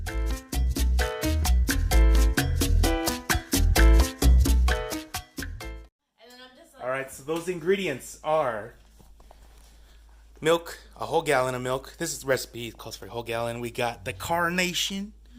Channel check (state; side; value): identical; both; correlation 1.00